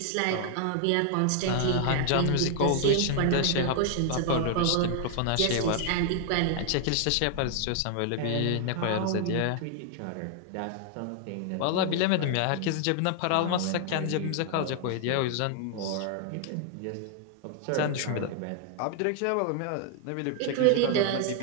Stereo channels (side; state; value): both; different; correlation 0.00